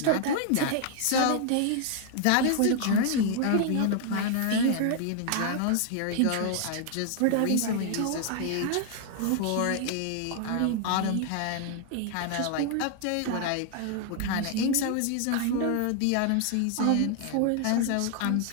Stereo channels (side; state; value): both; different; correlation 0.00